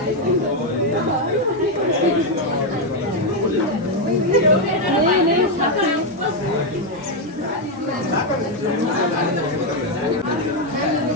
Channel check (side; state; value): both; normal; correlation 0.03